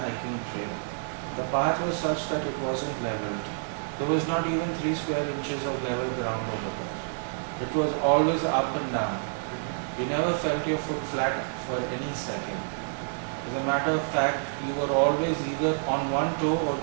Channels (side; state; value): left; silent; digital silence